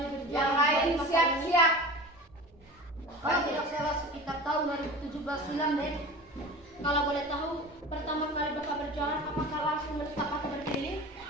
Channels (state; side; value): normal; both; correlation 0.35